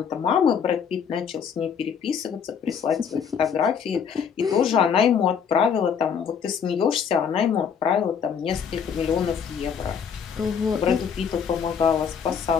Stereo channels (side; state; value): right; quieter; 7.1 dB